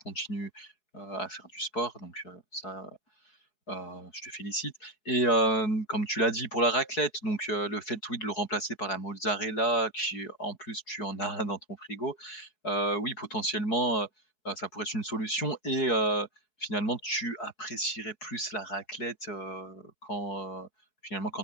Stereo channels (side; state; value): right; late; 4.7 ms